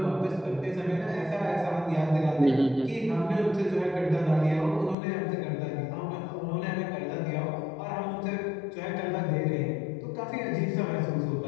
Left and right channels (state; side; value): drops out; right; at 5.0 s